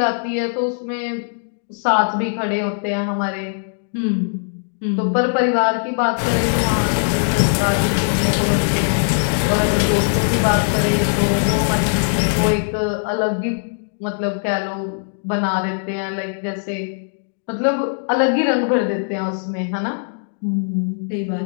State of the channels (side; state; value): right; silent; digital silence